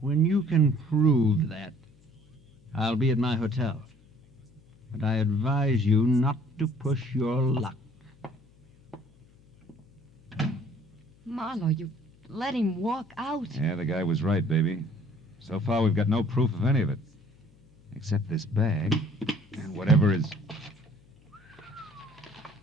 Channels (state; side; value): noise; left; hum, 29 dB below the sound